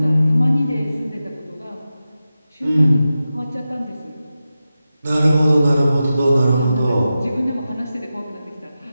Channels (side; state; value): both; inverted; correlation -0.92